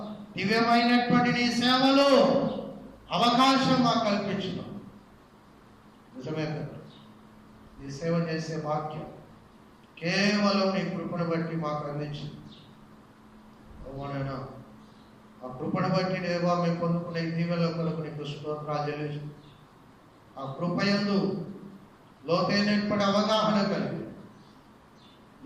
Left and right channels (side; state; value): both; identical; correlation 1.00